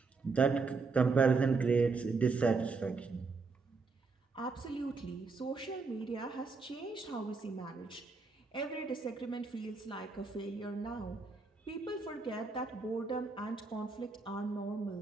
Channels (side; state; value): left; quieter; 4.4 dB